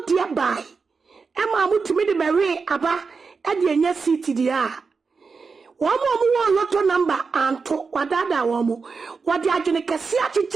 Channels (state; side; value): quieter; left; 4.9 dB